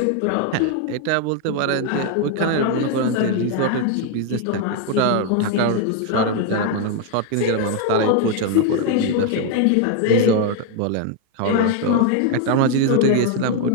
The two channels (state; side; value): different; both; correlation 0.00